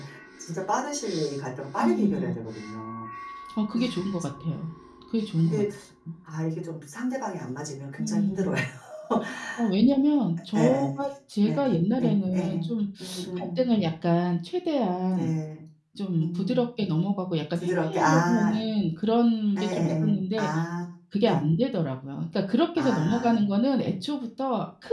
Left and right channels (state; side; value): identical; both; correlation 1.00